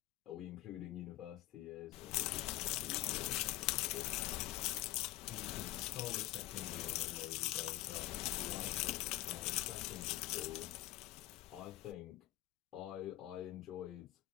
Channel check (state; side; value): quieter; right; 16.6 dB